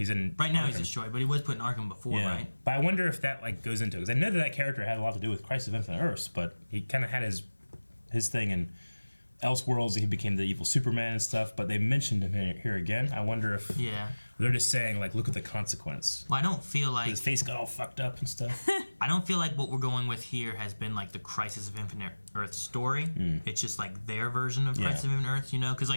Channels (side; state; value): both; inverted; correlation -1.00